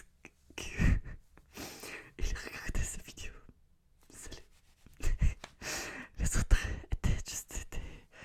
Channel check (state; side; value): identical; both; correlation 1.00